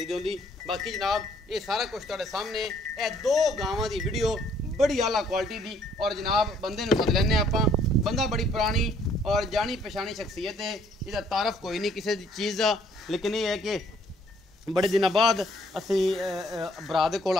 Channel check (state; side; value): normal; both; correlation 0.63